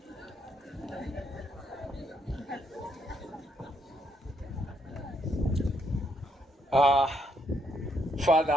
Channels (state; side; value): normal; both; correlation 0.74